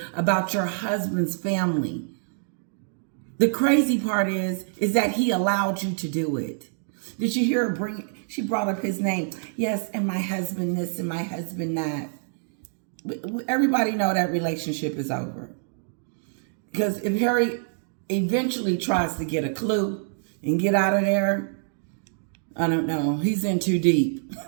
about your husband's family? The crazy part is that he allowed you to do it. Did you hear her she brought up his name. Yes, and my husband this and my husband that. Everybody know that relationship is over. Because if Harry eventually tries to get a clue and get out of there, I don't know, he's in too deep.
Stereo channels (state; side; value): silent; left; digital silence